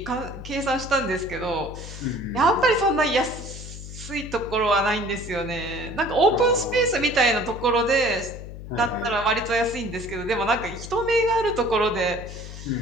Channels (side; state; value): left; noise; hum, 11 dB below the sound